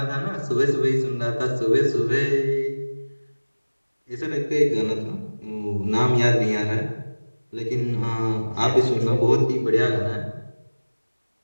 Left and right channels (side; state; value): both; inverted; correlation -1.00